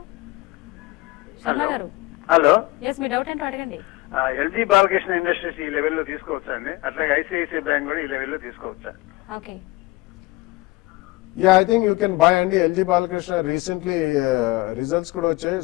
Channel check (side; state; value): right; quieter; 21.6 dB